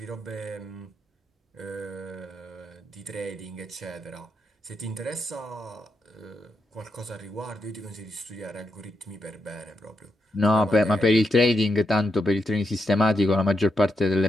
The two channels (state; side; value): normal; both; correlation 0.84